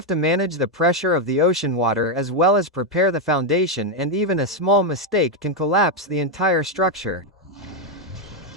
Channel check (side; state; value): both; normal; correlation 0.03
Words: to manage the pressure of the ocean water as well as prepare the foundation, and even a small mistake can collapse the entire structure.